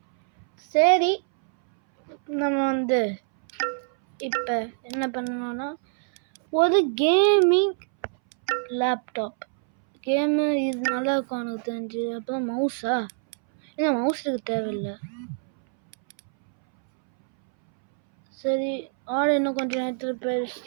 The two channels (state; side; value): silent; left; 62 dB below the other